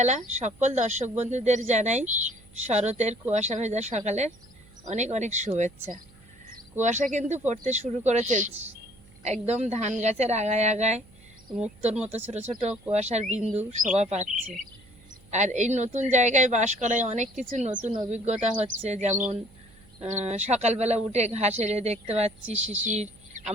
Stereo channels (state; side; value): noise; right; hum, 26 dB below the sound